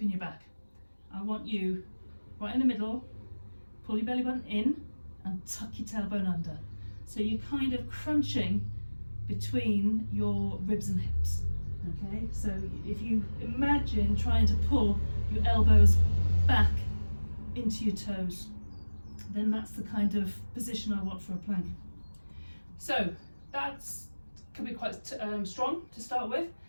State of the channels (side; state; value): both; inverted; correlation -1.00